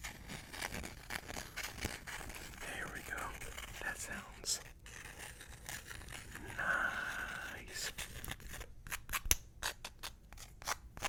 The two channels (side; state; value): both; identical; correlation 1.00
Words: There we go. That sounds nice.